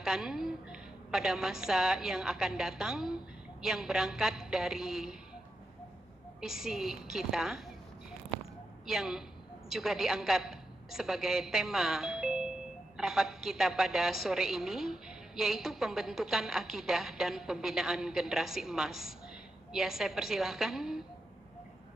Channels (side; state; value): both; normal; correlation 0.87